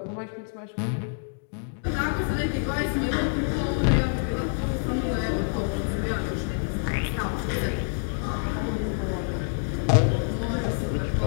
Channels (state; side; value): silent; right; 60 dB below the other